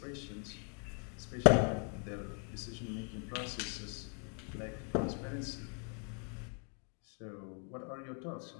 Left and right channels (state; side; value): quieter; right; 39.9 dB